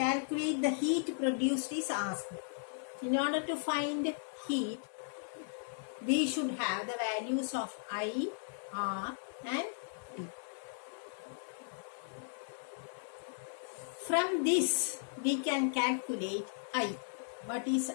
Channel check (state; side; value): silent; right; 54 dB below the other